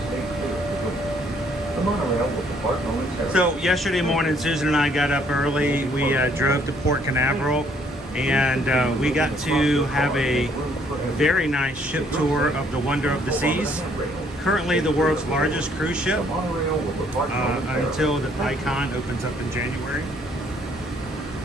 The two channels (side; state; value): both; normal; correlation 0.65